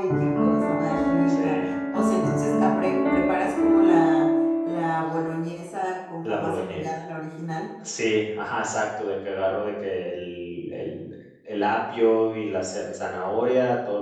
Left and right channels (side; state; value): both; identical; correlation 1.00